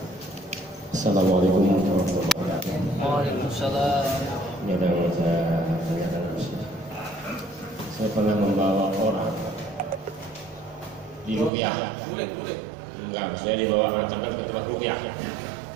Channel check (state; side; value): drops out; left; at 11.5 s